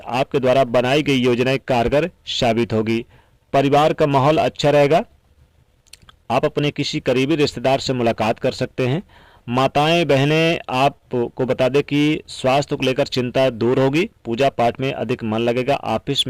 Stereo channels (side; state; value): both; identical; correlation 1.00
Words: द्वारा बनाई गई योजनाएं कारगर साबित होगी। परिवार का माहौल अच्छा रहेगा। आप अपने किसी करीबी रिश्तेदार से मुलाकात कर सकते हैं। माताएं बहनें आपको बता दें कि स्वास्थ्य को लेकर चिंता दूर होगी। पूजा पाठ में अधिक मन लगेगा। ऑफिस